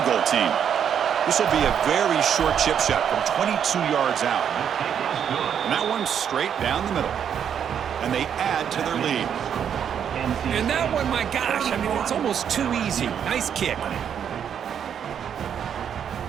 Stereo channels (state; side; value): quieter; left; 8.4 dB